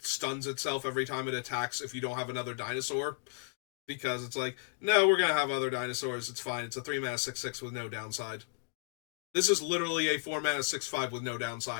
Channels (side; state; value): right; silent; digital silence